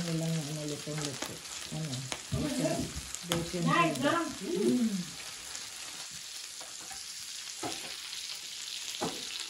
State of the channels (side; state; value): both; identical; correlation 1.00